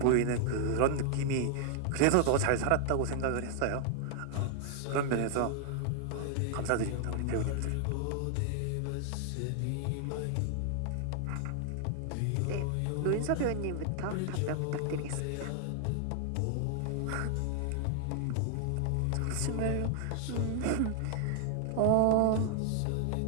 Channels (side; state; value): both; different; correlation 0.00